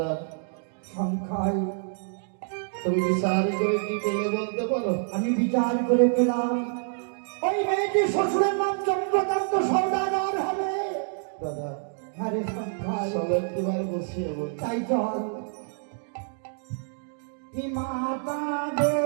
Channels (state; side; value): silent; left; digital silence